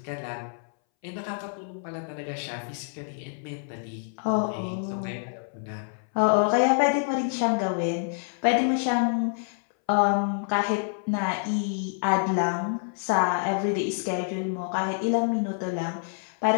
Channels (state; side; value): silent; right; 60 dB below the other